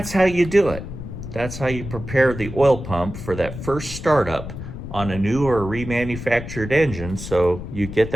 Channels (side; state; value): left; noise; rumble, 9 dB below the sound